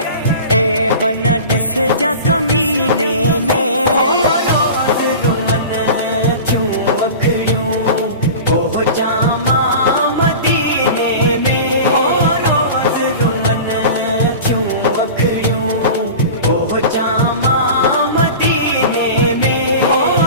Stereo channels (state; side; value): inverted; both; correlation -0.34